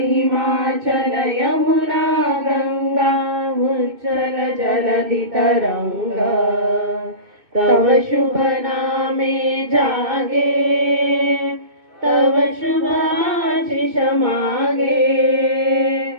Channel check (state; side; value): late; left; 2.6 ms